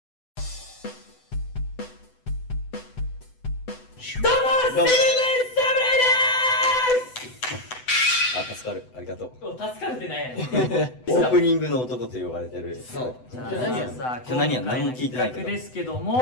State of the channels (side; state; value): right; late; 8.0 ms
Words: どうも、セブン侍あ、助かる。ありがとう。です。助かるってなんやねん。オープニングの男と呼ばれてる。そう。じゃあ何やさ、今日何や今回の何も聞いてないけど企画ですけど